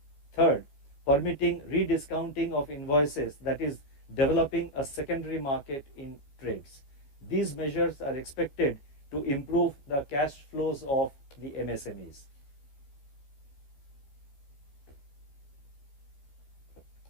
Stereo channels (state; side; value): late; right; 15 ms